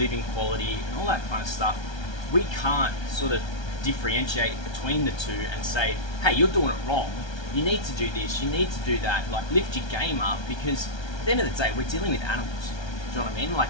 quality and all that kind of stuff, we can't sort of differentiate between the two and say, hey, you're doing it wrong. You need to do this. You need to do that. Like, lift your game up, because at the end of the day, we're dealing with animals. Do you know what I mean? Like,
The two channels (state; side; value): late; right; 1.3 ms